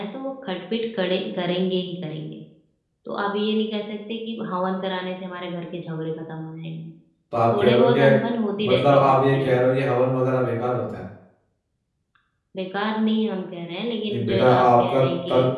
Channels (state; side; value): identical; both; correlation 1.00